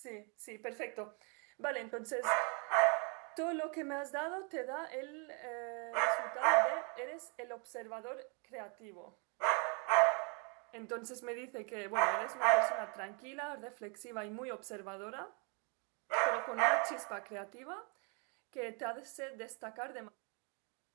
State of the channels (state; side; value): quieter; left; 35.6 dB